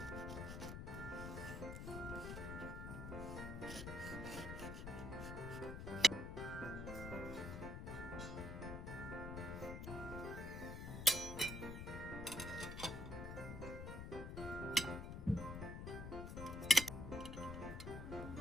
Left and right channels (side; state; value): left; noise; rumble, 6 dB below the sound